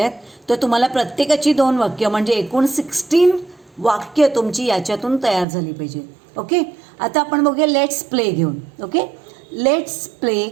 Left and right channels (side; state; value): left; drops out; at 5.5 s